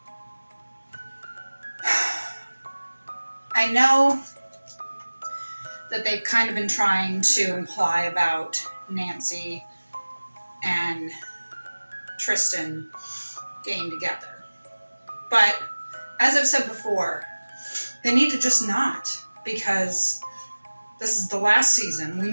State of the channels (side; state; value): both; inverted; correlation -1.00